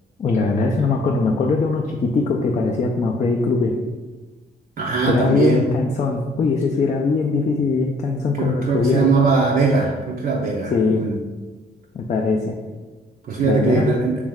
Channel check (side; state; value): both; normal; correlation 0.59